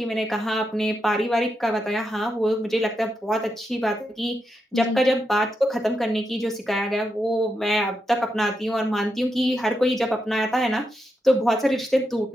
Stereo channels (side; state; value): both; normal; correlation 0.84